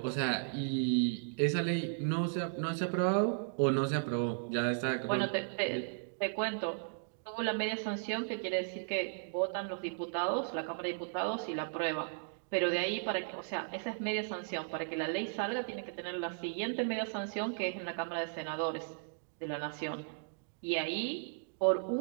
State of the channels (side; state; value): left; silent; digital silence